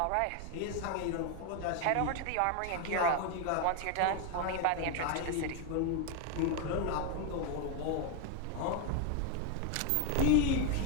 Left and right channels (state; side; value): different; both; correlation 0.01